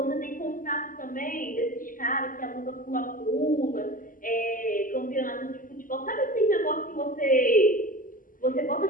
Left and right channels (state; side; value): late; right; 0.40 ms